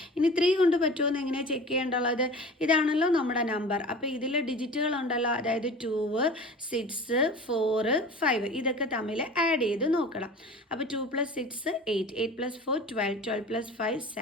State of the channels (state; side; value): normal; both; correlation 0.39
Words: ഇനി 3 കൊണ്ട് പറ്റുമോ എന്ന് എങ്ങനെയാണ് ചെക്ക് ചെയ്യേണ്ടുള്ളത്, ഇതാണല്ലോ നമ്മുടെ നമ്പർ. അപ്പോൾ ഇതിൽ ഡിജിറ്റുകൾ ഉണ്ടല്ലോ, അതായത് 2, 6, 4, 5 ഇതൊക്കെ തമ്മിൽ ആഡ് ചെയ്ത് നോക്കണം. അപ്പോൾ 2 + 6 8, 8 + 4 12, 12 + 5